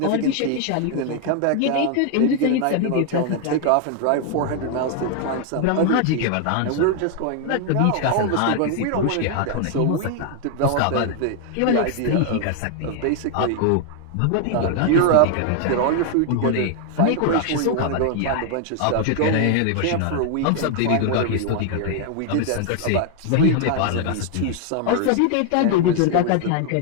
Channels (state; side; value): different; both; correlation 0.00